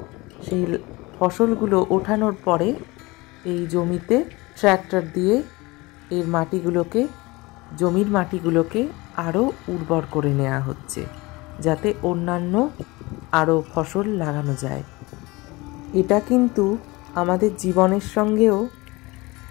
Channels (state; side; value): quieter; right; 22.9 dB